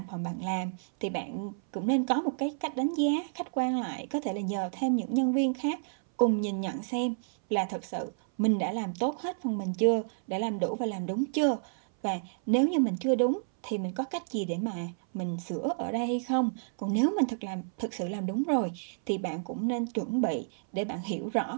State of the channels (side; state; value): left; silent; 58 dB below the other